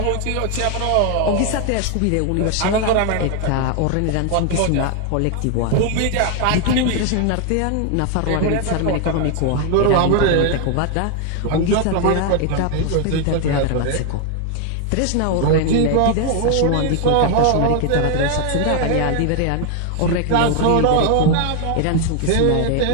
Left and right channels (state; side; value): different; both; correlation 0.00